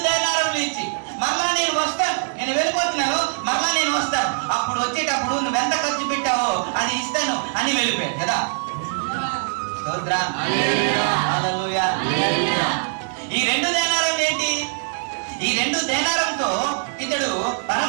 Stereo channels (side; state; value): left; silent; digital silence